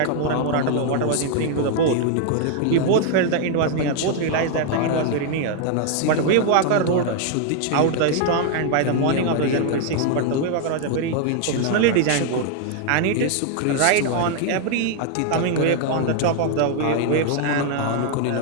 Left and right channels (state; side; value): different; both; correlation 0.00